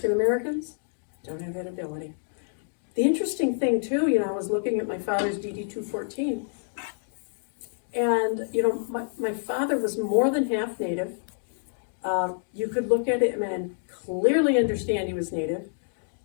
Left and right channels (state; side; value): silent; right; digital silence